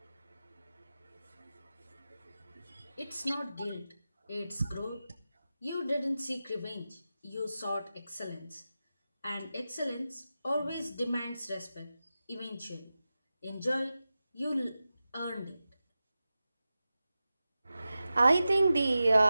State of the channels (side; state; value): both; inverted; correlation -0.93